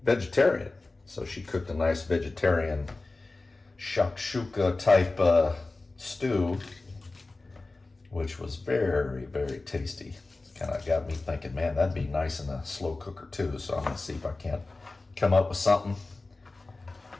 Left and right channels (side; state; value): right; quieter; 3.3 dB